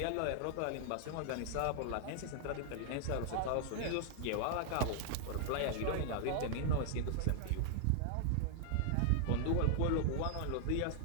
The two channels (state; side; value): different; both; correlation -0.01